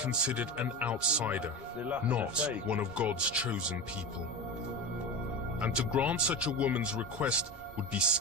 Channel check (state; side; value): normal; both; correlation 0.25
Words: an outsider, not one of God's chosen people. And to grant such a woman's request would be